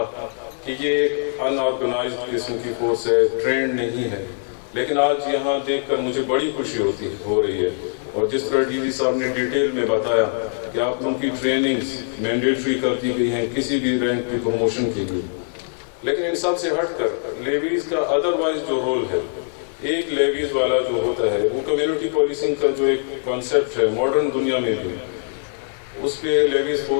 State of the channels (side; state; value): right; silent; digital silence